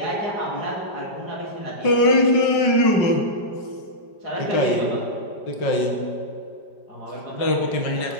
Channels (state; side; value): late; right; 5.0 ms